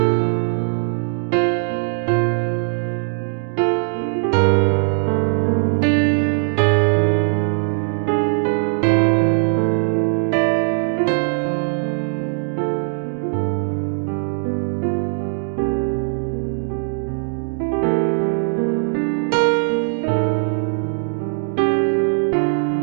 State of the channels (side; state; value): left; silent; digital silence